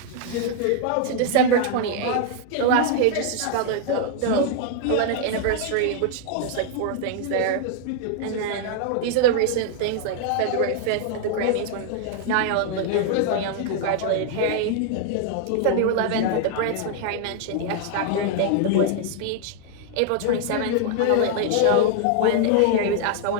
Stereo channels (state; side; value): different; both; correlation 0.00